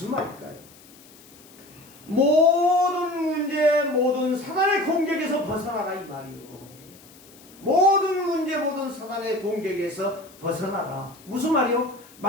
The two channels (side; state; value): left; noise; hiss, 24 dB below the sound